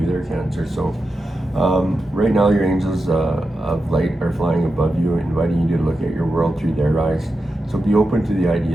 there, Cancer. So right now your angels of light are flying above you, inviting you to look at your world through their eyes. So be open to the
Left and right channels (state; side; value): normal; both; correlation 0.89